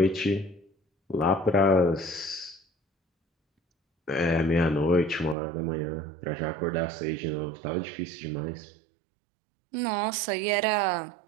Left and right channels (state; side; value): drops out; left; at 5.4 s